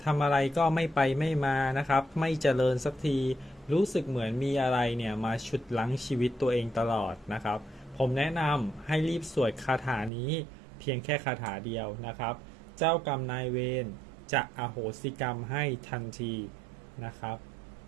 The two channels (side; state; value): left; drops out; at 10.1 s